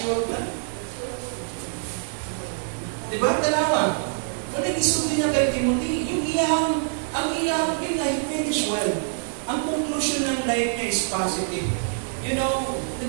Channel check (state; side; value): silent; left; 62 dB below the other